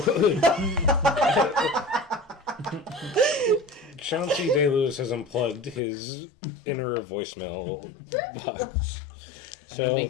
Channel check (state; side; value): drops out; right; at 5.8 s